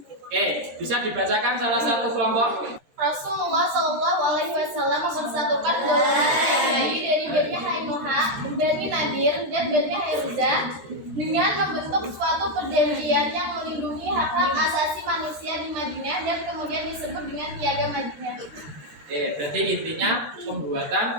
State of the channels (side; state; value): left; late; 13 ms